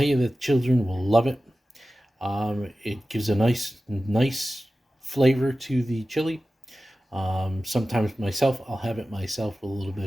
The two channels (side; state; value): both; normal; correlation 0.95